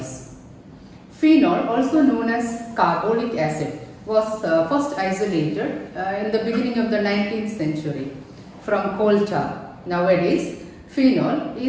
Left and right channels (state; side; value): identical; both; correlation 1.00